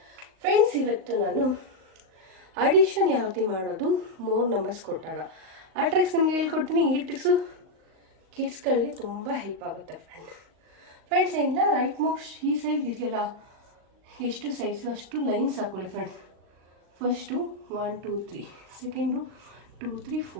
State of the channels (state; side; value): late; left; 38 ms